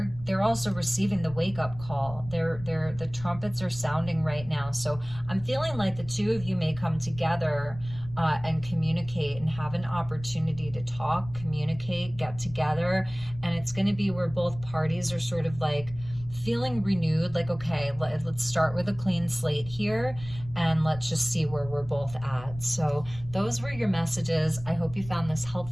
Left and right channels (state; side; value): noise; left; rumble, 15 dB below the sound